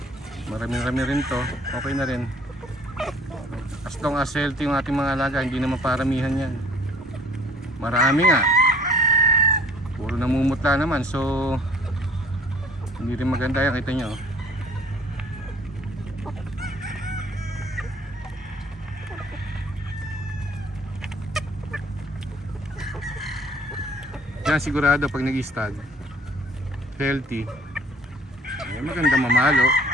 marami-rami rin to, okay na rin. As long as healthy yung ating mga alaga, hindi naman paramihan yan. Marami nga, puro namumutla naman, so hindi rin maganda yan, kita nyo. Yan sigurado pag nag-stag healthy, maganda mamalo,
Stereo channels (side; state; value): both; normal; correlation 0.54